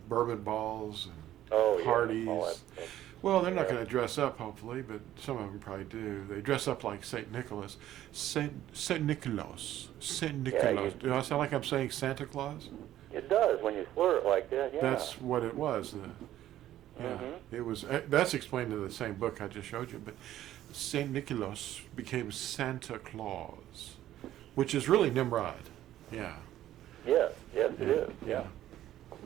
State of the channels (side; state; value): left; quieter; 13.0 dB